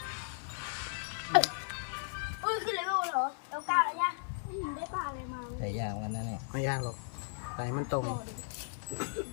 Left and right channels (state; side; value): silent; right; 54 dB below the other